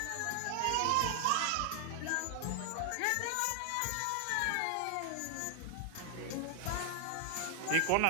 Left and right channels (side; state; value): both; different; correlation 0.00